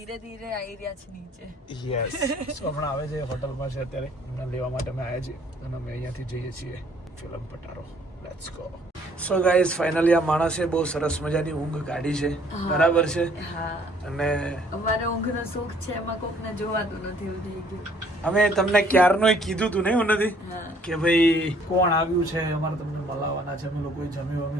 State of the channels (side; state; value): both; normal; correlation 0.61